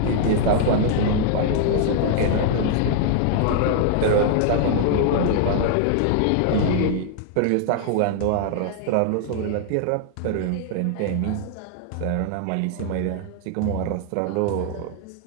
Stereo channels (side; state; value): both; different; correlation 0.00